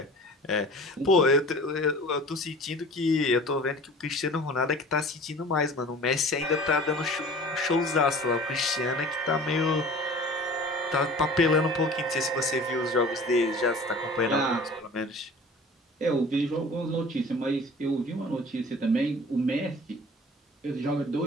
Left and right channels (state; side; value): normal; both; correlation 0.43